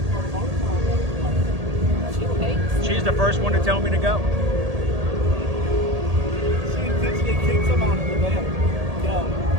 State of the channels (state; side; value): late; left; 1.8 ms